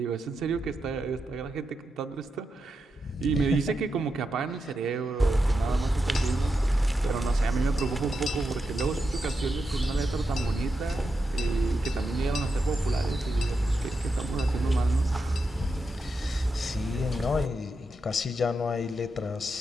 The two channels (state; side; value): normal; both; correlation 0.87